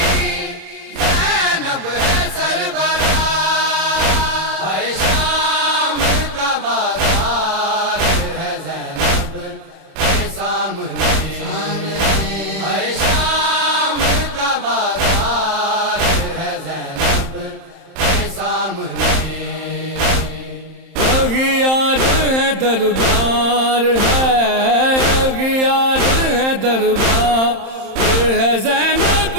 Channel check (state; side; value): late; left; 31 ms